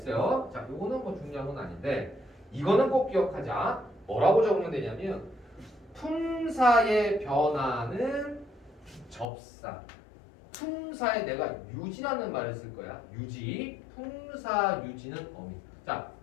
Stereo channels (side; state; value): right; drops out; at 9.2 s